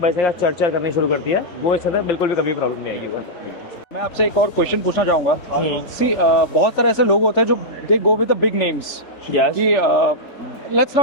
बचेगा चरचर करनी शुरू करती है, वो इसके अंदर बिल्कुल भी कभी प्रॉब्लम नहीं आएगी। मैं आपसे एक और क्वेश्चन पूछना चाहूँगा। सी बहुत सारे ऐसे लोग होते हैं जो they go with the big names, Yes. कि let's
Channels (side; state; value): right; late; 3.4 ms